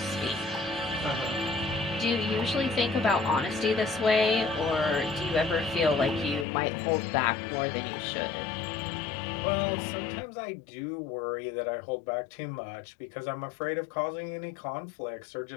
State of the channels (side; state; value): right; drops out; at 6.5 s